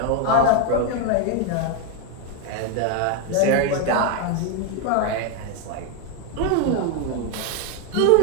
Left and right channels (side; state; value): both; different; correlation 0.01